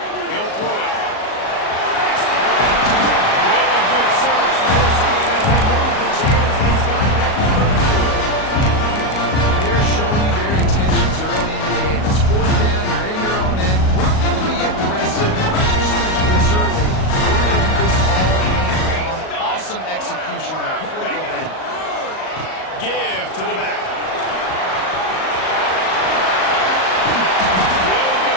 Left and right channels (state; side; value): late; right; 38 ms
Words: He'll throw it. Really good surge for this offense. They move the chains, and he's got it at the 32. They're showing you their intentions early in the game. It's 4th down, you're in your own end. We're going to be aggressive, and we're just going to do this early. We're going to do this all game long. Awesome execution on a critical bend. Give to the back.